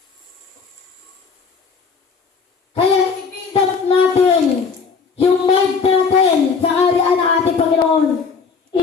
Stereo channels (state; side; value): quieter; right; 5.3 dB